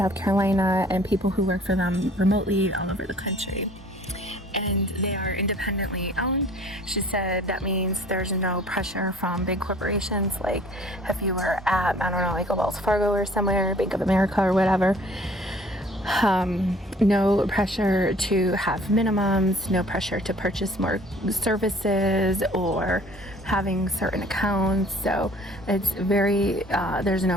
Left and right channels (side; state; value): both; normal; correlation 0.53